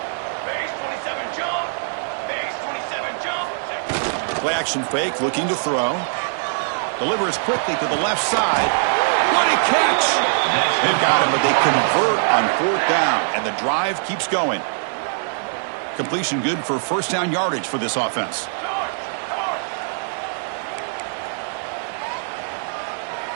Base 27 jump. Base 27 jump. Play action fake, looking to throw. Delivers quickly to the left side. What a catch! They've got him, but they convert on fourth down, and the drive keeps going. Completion good for first down yardage for this offense.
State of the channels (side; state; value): left; silent; 64 dB below the other